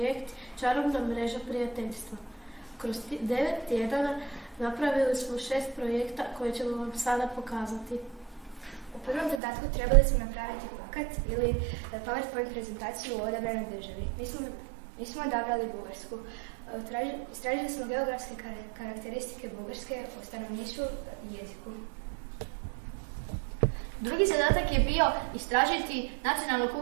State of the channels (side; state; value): left; drops out; at 9.4 s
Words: Čarobna mreža prijateljstva. Kroz 9 tjedana napravili smo 6 projekta koje ćemo vam sada pokazati. U prvom zadatku trebali smo napraviti plakat ili PowerPoint prezentaciju o odabranoj državi. Mi smo odabrali Bugarsku. Istražili smo geografske karakteristike Bugarske o stanovništvu i jeziku. Drugi zadatak je bio istražiti nacionalnu